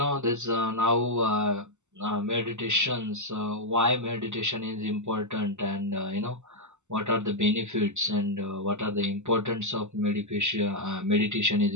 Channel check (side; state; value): left; late; 0.84 ms